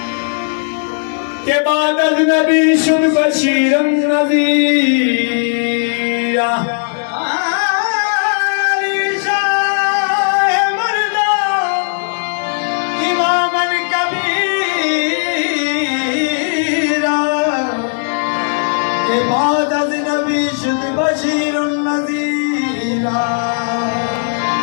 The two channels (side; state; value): right; silent; 69 dB below the other